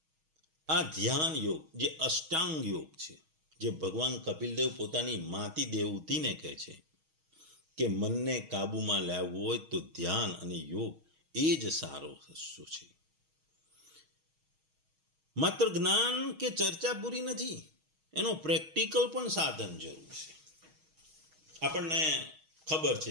આ ધ્યાન યોગ, જે અષ્ટાંગ યોગ છે, જે ભગવાન કપિલદેવ પોતાની માતી દેવતીને કહે છે કે મનને કાબૂમાં લાવવું હોય તો ધ્યાન અને યોગ એ જ સારો રસ્તો છે. માત્ર જ્ઞાન કે ચર્ચા પૂરી નથી, એનો પ્રેક્ટિકલ પણ સાધન જરૂર છે. આપણને ખબર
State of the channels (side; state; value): left; late; 6.3 ms